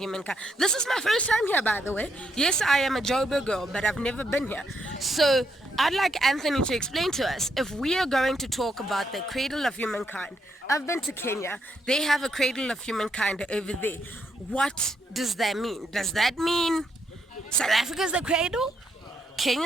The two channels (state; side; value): normal; both; correlation 0.77